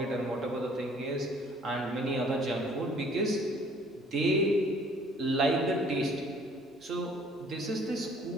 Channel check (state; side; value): normal; both; correlation 0.56